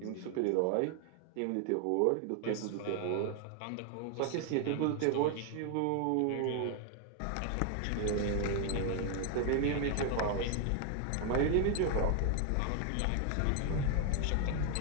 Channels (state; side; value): different; both; correlation 0.00